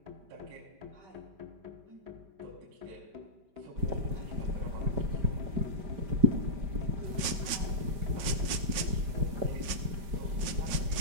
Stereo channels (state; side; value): late; left; 5.5 ms